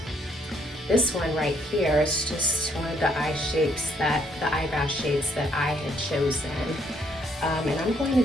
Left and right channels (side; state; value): both; normal; correlation 0.69